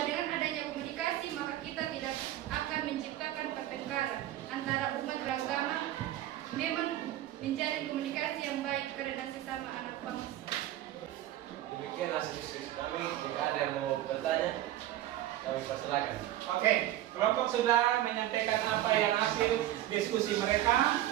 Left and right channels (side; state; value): left; quieter; 13.8 dB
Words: dengan adanya komunikasi maka kita tidak akan menciptakan pertengkaran antara umat beragama. Memang menjalin komunikasi yang baik karena sesama anak bangsa. Demikian hasil diskusi kami. Jika ada yang mau bertanya, kami persilakan. Oke, kelompok sudah menyampaikan apa yang hasil diskusi mereka.